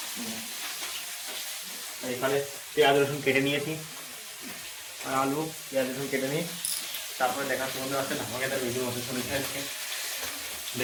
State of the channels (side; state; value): both; identical; correlation 1.00